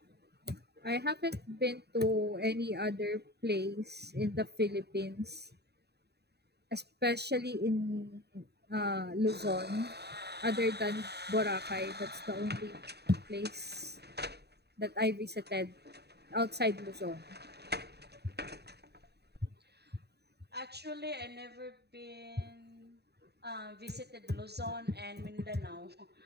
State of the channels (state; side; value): late; left; 0.48 ms